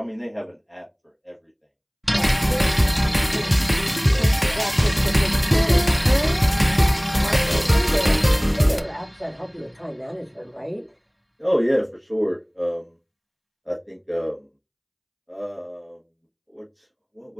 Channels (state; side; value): identical; both; correlation 1.00